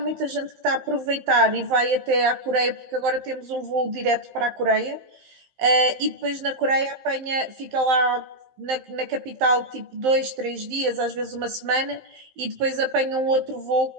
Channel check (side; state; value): left; late; 15 ms